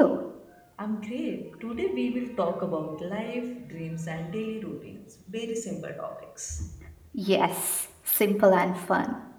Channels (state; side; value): identical; both; correlation 1.00